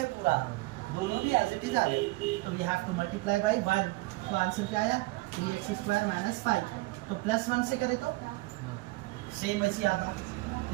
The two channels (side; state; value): left; quieter; 21.8 dB